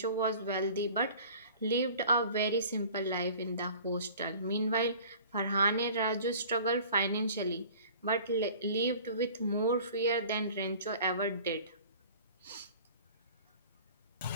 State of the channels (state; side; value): inverted; both; correlation -0.46